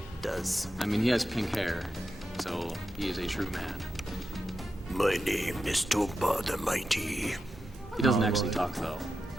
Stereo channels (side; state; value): both; normal; correlation 0.89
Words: Does. I mean, he has pink hair, so he is a true man. My name is Tomba the Mighty. He doesn't actually talk though,